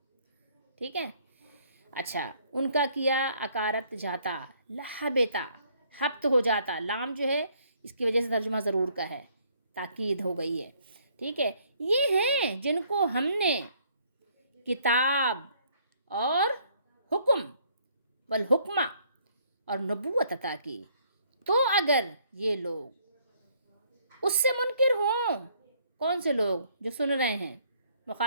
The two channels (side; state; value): both; inverted; correlation -0.64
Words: ٹھیک ہے۔ اچھا، ان کا کیا اکارت جاتا، لحبتا، حبت ہو جاتا، لام جو ہے اس کی وجہ سے ترجمہ ضرور کا ہے، تاکید ہو گئی ہے، ٹھیک ہے۔ یہ ہیں جن کو ہم نے کتاب اور حکم والحکمہ اور نبوت عطا کی، تو اگر یہ لوگ اس سے منکر ہوں، کون سے لوگ؟ جو سن رہے ہیں،